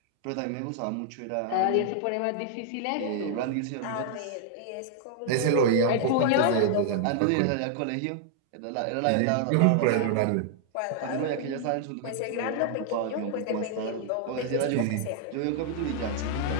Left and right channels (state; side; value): different; both; correlation 0.00